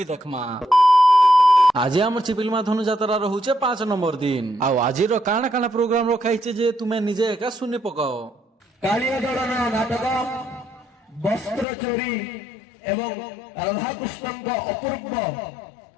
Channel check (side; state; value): right; drops out; at 11.7 s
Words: देखमा। आज आम चिपिलमा धनु जात्रा रहुचे 5 नंबर दिन आ आजिर काना काना प्रोग्राम रखाइছে जे तुमे निजे एका सुनी पकाओ। कालिया दलन नाटक वस्त्र चोरी एवं राधा कृष्णଙ୍କ अपूर्व